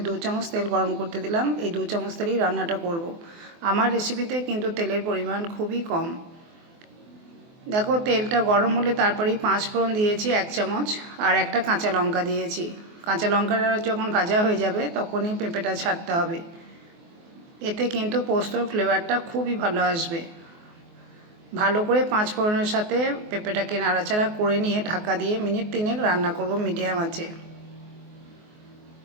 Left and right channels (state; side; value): late; left; 24 ms